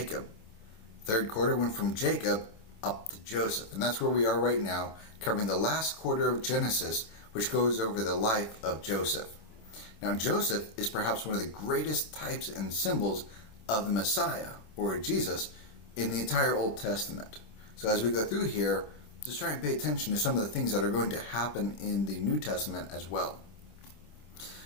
Third quarter went from Jacob up to Joseph, and that's where we are right now, covering the last quarter of Genesis, which goes over the life of Joseph. Now, Joseph is perhaps one of the greatest types and symbols of the Messiah, or Jesus, in the entire Old Testament. So as we go through here, just try and pay attention to some of the things that are going to happen in the New Testament as well.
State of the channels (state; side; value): late; right; 27 ms